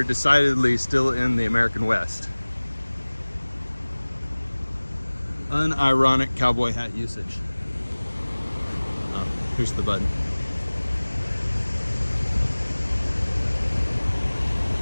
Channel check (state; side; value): inverted; both; correlation -1.00